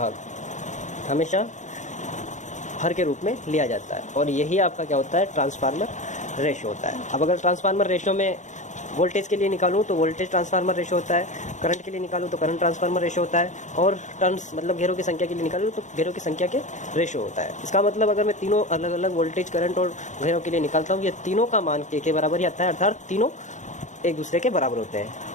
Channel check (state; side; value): late; right; 0.35 ms